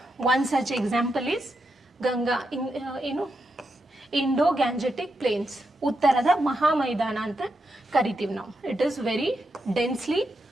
One such example is Ganga, Indo-Gangetic Plains. ಉತ್ತರದ ಮಹಾಮೈದಾನ ಅಂತ ಕರಿತೀವಿ ನಾವು. It is very densely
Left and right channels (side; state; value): both; normal; correlation 0.85